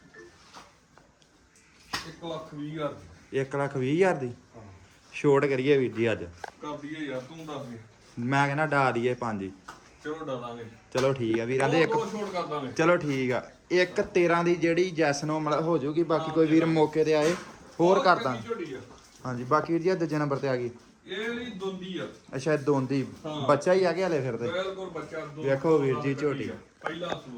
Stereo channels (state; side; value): identical; both; correlation 1.00